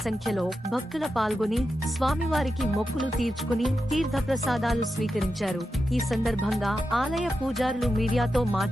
సంఖ్యలో భక్తుల పాల్గొని స్వామివారికి మొక్కులు తీర్చుకుని తీర్థప్రసాదాలు స్వీకరించారు. ఈ సందర్భంగా ఆలయ పూజారులు మీడియాతో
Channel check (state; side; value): normal; both; correlation 0.89